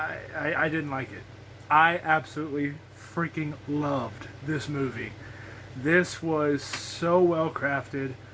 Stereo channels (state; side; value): identical; both; correlation 1.00